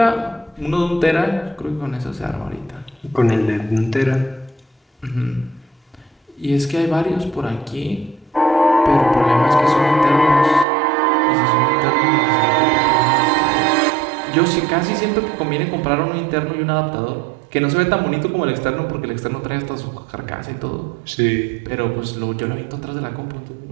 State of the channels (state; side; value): drops out; left; at 10.7 s